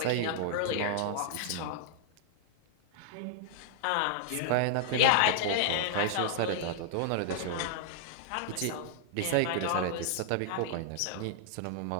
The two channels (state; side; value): different; both; correlation -0.01